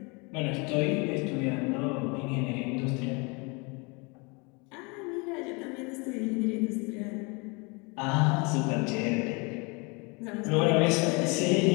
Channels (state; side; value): quieter; right; 29.6 dB